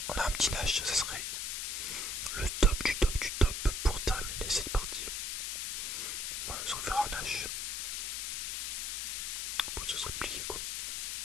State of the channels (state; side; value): noise; left; hiss, 2 dB below the sound